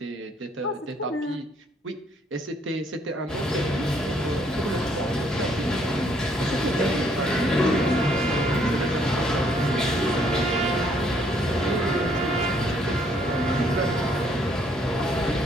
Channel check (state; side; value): normal; both; correlation 0.67